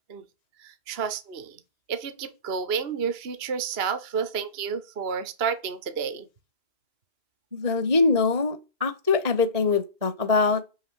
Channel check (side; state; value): left; late; 2.8 ms